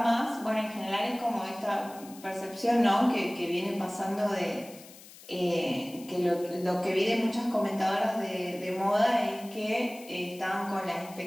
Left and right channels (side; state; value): left; noise; hiss, 19 dB below the sound